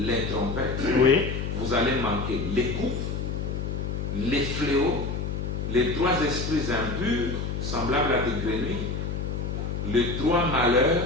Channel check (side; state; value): left; noise; hum, 3 dB below the sound